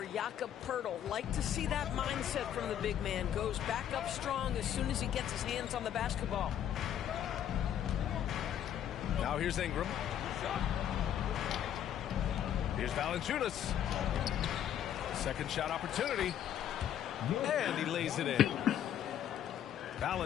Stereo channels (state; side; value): quieter; right; 10.2 dB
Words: Jakob Poeltl. Like to see that mindset from the big man. Goes back up strong as soon as he gets his hands on the basketball. Now here's Ingram. Here's Valanciunas. Second shot opportunity. And he lays it in.